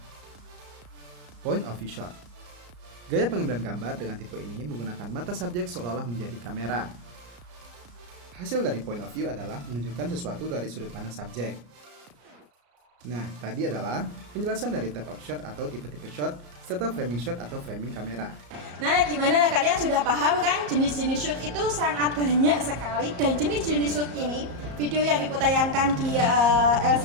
Point of view shot. Gaya pengambilan gambar dengan tipe ini menggunakan mata subjek seolah-olah menjadi kamera. Hasil dari point of view adalah menunjukkan sesuatu dari sudut pandang subjek. Nah, tadi adalah penjelasan dari type of shot atau tipe-tipe shot serta framing shot atau framing kamera. Nah, gimana? Kalian sudah paham kan? Jenis-jenis shoot itu sangat banyak sekali, dan jenis-jenis shoot ini, video yang Ibu tayangkan di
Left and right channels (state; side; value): late; left; 34 ms